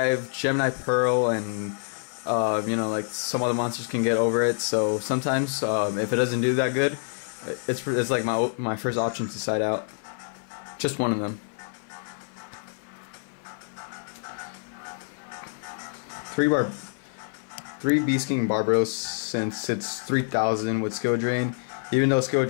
Gemini Pearl, and like some other monsters can get over it. So sometimes if it doesn't do that good, it's like my first option to side out. Just one of them. 3 Beast King Barbaros, since it's 3,000 with skill drain. Even though skill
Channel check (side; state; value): right; silent; 56 dB below the other